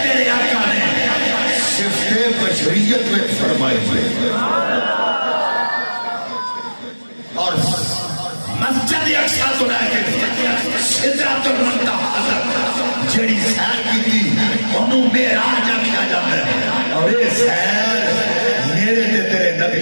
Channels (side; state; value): both; inverted; correlation -1.00